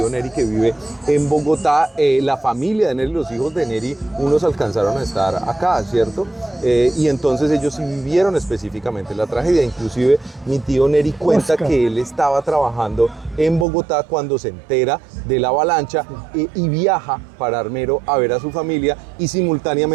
Neri que vive en Bogotá. La familia de Neri, los hijos de Neri, unos alcanzaron a estar acá, ¿cierto? Y entonces ellos sí vivieron específicamente la tragedia. Inclusive mi tío Neri cuenta que él estaba trabajando en Bogotá cuando se entera de la avalancha y viaja para Armero a ver a su familia y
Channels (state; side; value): drops out; left; at 13.7 s